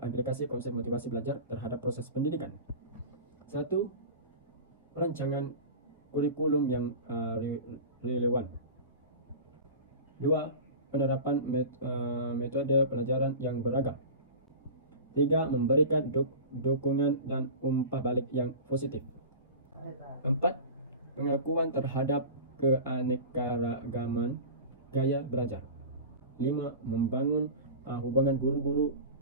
konsep motivasi belajar terhadap proses pendidikan. Satu, rancangan kurikulum yang relevan. Dua, penerapan metode pelajaran yang beragam. Tiga, memberikan dukungan dan umpan balik yang positif. Empat, pengakuan terhadap keanekaragaman gaya belajar. Lima, membangun hubungan guru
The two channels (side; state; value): both; inverted; correlation -0.33